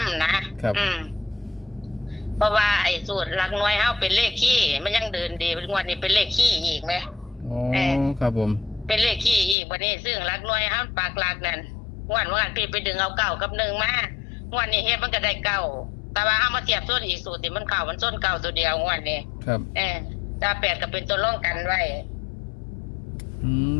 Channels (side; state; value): right; drops out; at 9.6 s